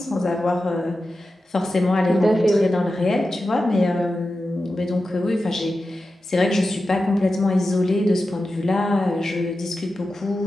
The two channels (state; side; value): normal; both; correlation 0.92